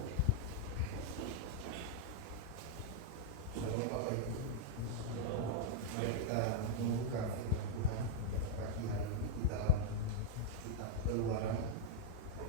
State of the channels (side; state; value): both; different; correlation -0.01